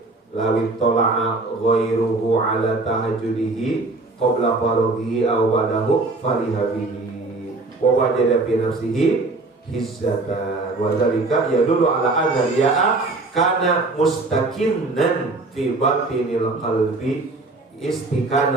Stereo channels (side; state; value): left; quieter; 3.3 dB